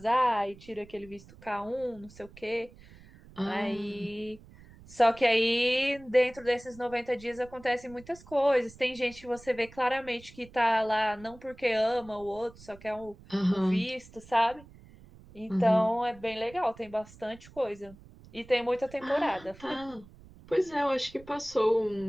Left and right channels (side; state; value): right; noise; rumble, 21 dB below the sound